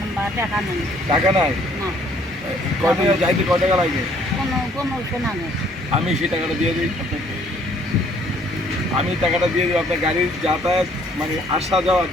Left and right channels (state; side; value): normal; both; correlation 0.62